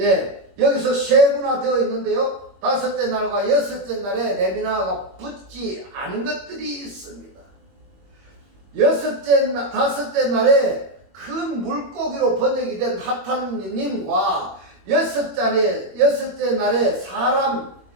여기서 세분화되어 있는데요. 다섯째 날과 여섯째 날에 레미나흐가 붙지 않은 것들이 있습니다. 다섯째 날에 큰 물고기로 번역이 된 하탄님과 여섯째 날에 사람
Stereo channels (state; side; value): late; left; 21 ms